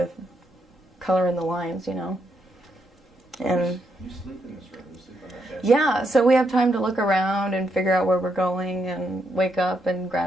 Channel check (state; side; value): normal; both; correlation 0.79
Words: color in the lines, And You sleep in this room. You sleep on that bed. yeah, so we have time to look around and figure out where we're going and wake up and